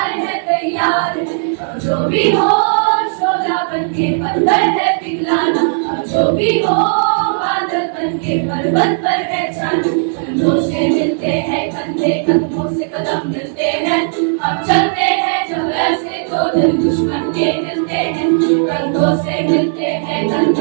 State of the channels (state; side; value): silent; left; digital silence